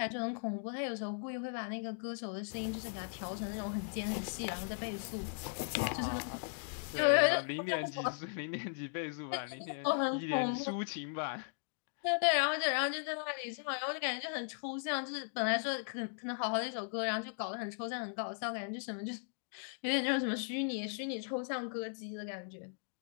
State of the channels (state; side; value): silent; right; digital silence